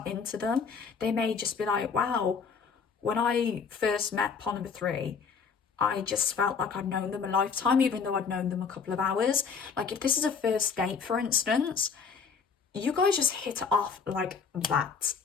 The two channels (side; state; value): right; quieter; 5.8 dB